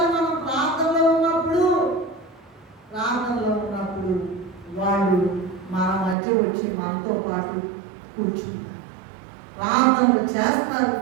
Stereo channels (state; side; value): drops out; left; at 6.2 s